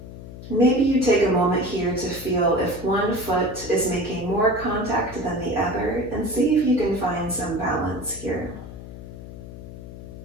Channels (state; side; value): noise; left; hum, 13 dB below the sound